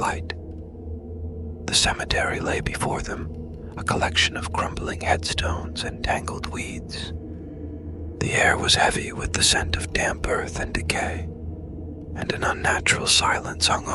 The cemetery lay before them, a collection of crumbling headstones and tangled weeds. The air was heavy with the scent of damp earth and decay, and an unnatural silence hung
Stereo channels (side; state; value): both; identical; correlation 1.00